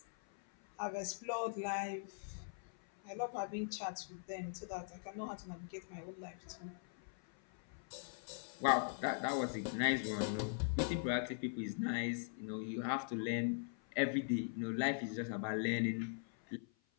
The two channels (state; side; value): silent; right; 50 dB below the other